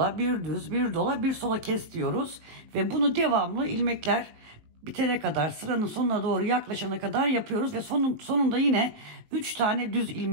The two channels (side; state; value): left; late; 19 ms